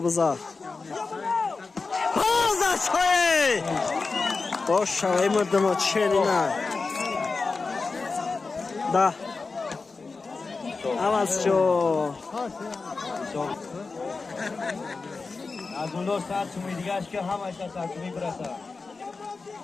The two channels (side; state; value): right; quieter; 4.2 dB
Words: بزار آزاشوی باش شوی مردم چلی نه ده عوض شو از اون دو ساعت سومی دیگه اش که همش از ساعتمی برسه